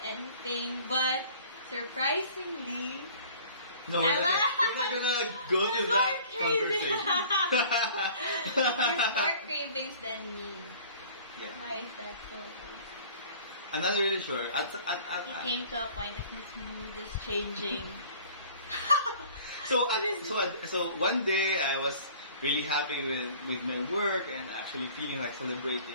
anything. But surprisingly, no, we're not gonna go to that conversation. There's more cravings than me. Yeah. Why is that so? I'm not really sure. It came to a point that his mood is changing. So one day I was really happy with my work and actually feeling like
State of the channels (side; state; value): both; inverted; correlation -0.49